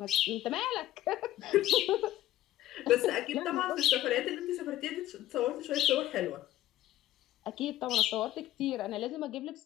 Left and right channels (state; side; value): quieter; right; 14.4 dB